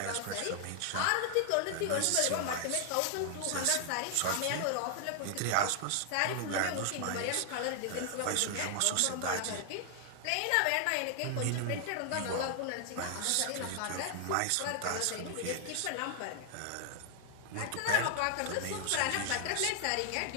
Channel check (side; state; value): both; different; correlation 0.00